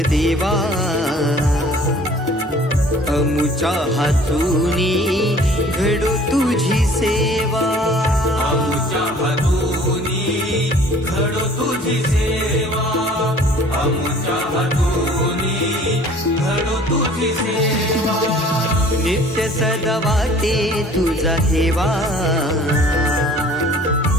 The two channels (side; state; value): both; normal; correlation 0.51